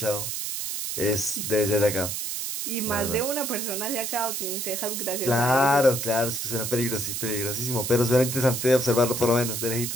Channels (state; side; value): noise; right; hiss, 3 dB below the sound